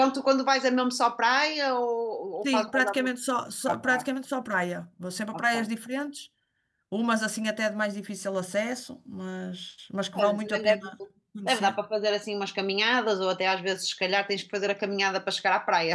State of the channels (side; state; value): both; identical; correlation 1.00